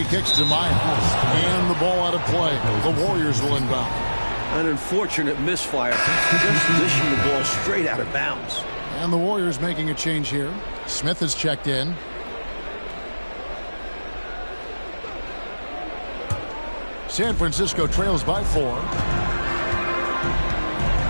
kicks to Miles. And the ball out of play. The Warriors will inbound. An unfortunate misfire. Just dishing the ball straight out of bounds. And the Warriors making a change here. Smith is checked in. San Francisco trails by 4.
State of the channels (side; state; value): both; inverted; correlation -1.00